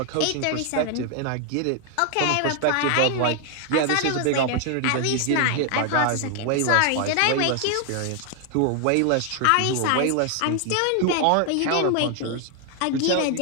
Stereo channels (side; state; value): both; different; correlation 0.00